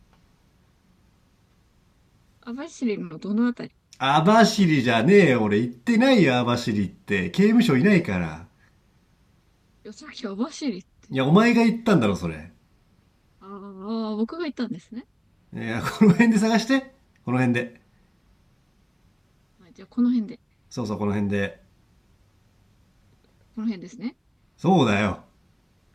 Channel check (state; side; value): identical; both; correlation 1.00